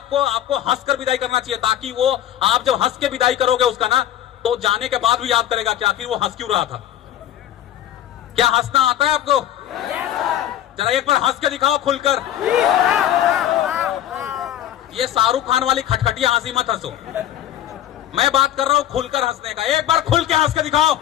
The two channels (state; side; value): quieter; right; 11.6 dB